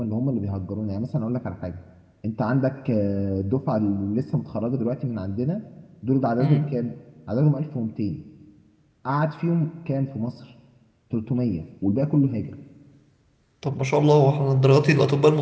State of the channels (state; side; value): identical; both; correlation 1.00